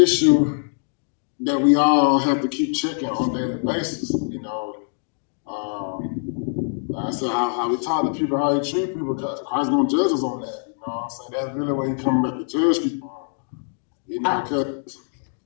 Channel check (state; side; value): silent; right; 62 dB below the other